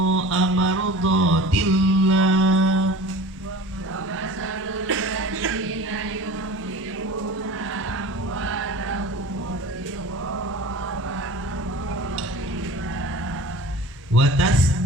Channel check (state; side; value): normal; both; correlation 0.38